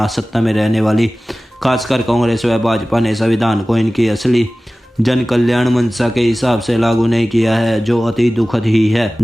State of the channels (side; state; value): both; normal; correlation 0.97